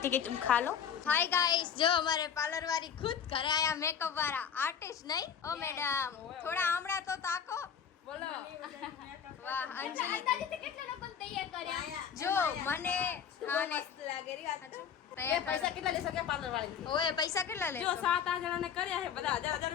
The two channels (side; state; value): right; quieter; 7.8 dB